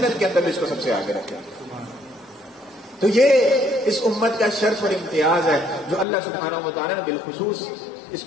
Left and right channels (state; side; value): drops out; right; at 6.1 s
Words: کے اندر بھی اس کو سب سے آگے رکھتے ہیں. تو یہ اس امت کا شرف اور امتیاز ہے جو اللہ سبحانہ و تعالیٰ نے بالخصوص اس